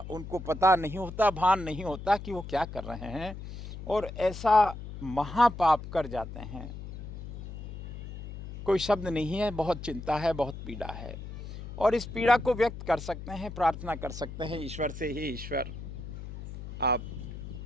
उनको पता नहीं होता, भान नहीं होता कि वो क्या कर रहे हैं, और ऐसा महापाप कर जाते हैं। कोई शब्द नहीं है, बहुत चिंता है, बहुत पीड़ा है, और इस पीड़ा को व्यक्त कर सकते हैं, प्रार्थना कर सकते हैं ईश्वर से, हे ईश्वर आप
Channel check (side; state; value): left; noise; hum, 10 dB below the sound